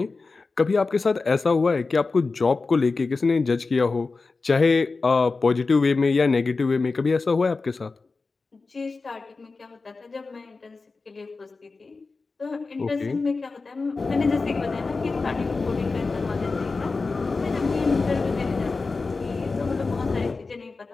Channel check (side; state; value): right; quieter; 4.0 dB